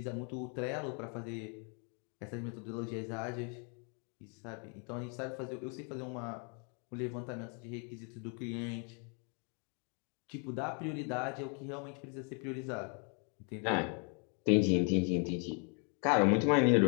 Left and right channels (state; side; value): quieter; right; 38.3 dB